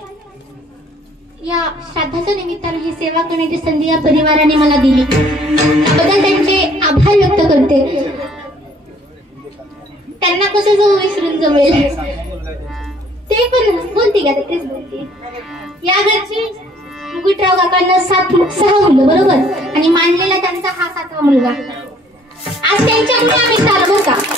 या श्राद्धाच्या निमित्तानं ही सेवा करण्याची संधी या परिवाराने मला दिली, त्याबद्दल त्यांचे आभार व्यक्त करते. त्यांना कसं जाऊ विसरून जमेल, ते पण बोलते का, तेच बोलते. या घरची मुकुटराव काकांना 6 मुलं बरोबर, आणि मांडलेला त्यांचा हा 7वा मुलगा. आज त्यांच्यामुळे आम्ही चालवू का,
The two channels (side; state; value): both; normal; correlation 0.60